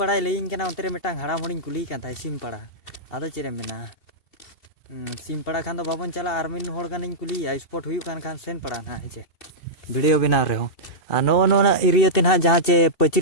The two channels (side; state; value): right; late; 2.7 ms